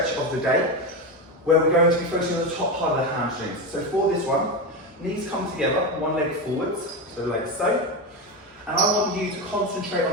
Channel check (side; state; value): both; normal; correlation 0.16